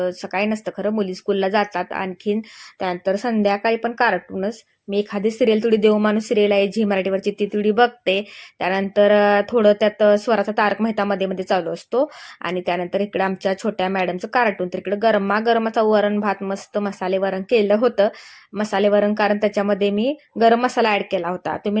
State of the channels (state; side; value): identical; both; correlation 1.00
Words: सकाळी नसतं खरं, मुली स्कूलला जातात. आणखीन त्यानंतर संध्याकाळी पण कार्टूनच. मी एखादी सिरियल, थोडी देवमाणूस सिरियल आहे झी मराठीवरची, ती थोडी बघते. त्यानंतर थोडं त्यात स्वराचा तारक मेहता मध्ये मध्ये चालू असतो. आणि त्यानंतर इकडे आमच्या छोट्या मॅडमचं कार्टून. तर इकडे गरमागरमाचा वरण भात, मस्त मसाले वरण केलं होतं. मसाले वरण कारण त्याच्यामध्ये मी गरम मसाला ॲड केला होता.